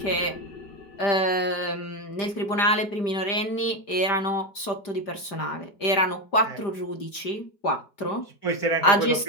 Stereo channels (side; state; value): right; late; 5.0 ms